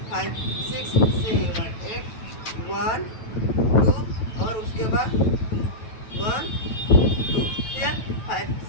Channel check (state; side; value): late; right; 9.1 ms